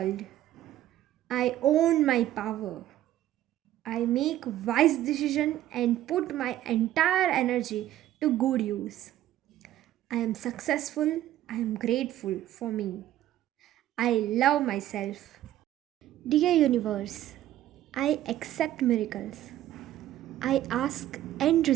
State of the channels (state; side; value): quieter; left; 13.3 dB